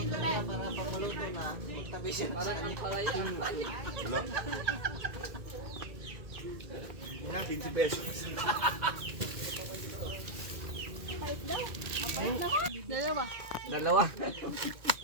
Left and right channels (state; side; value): late; left; 2.2 ms